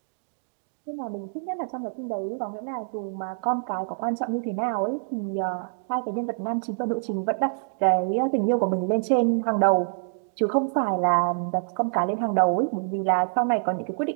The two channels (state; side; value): silent; left; digital silence